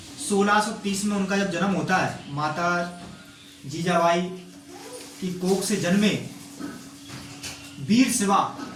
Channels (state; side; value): identical; both; correlation 1.00